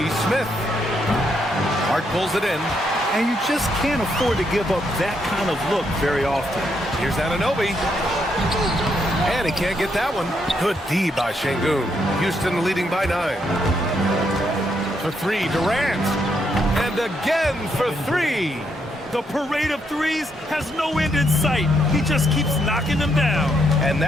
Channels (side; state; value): both; normal; correlation 0.77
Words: Smith. Hart pulls it in. And you just can't afford to give up that kind of look very often. Here's Anunoby. And he can't get that one. Good D by Şengün. Houston leading by 9. For 3, Durant. And again for 3. The parade of threes has no end in sight. He just keeps knocking them down. And